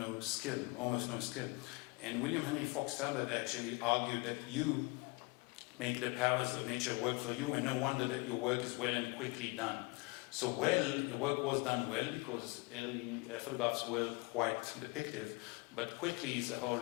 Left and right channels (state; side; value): quieter; right; 27.1 dB